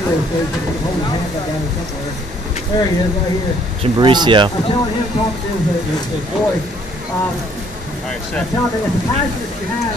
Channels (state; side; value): normal; both; correlation 0.63